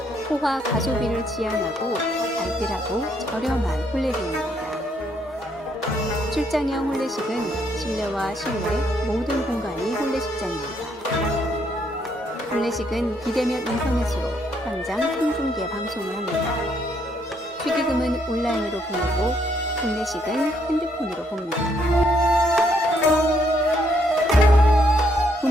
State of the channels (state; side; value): normal; both; correlation 0.72